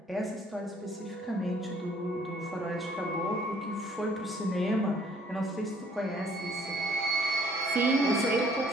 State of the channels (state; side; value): normal; both; correlation 0.60